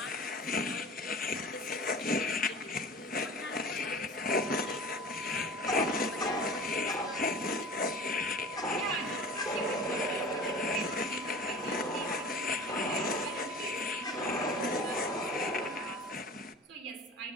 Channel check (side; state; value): both; normal; correlation 0.40